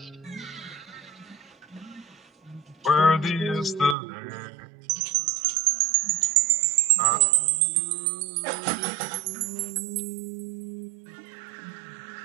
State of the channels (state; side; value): drops out; left; at 4.0 s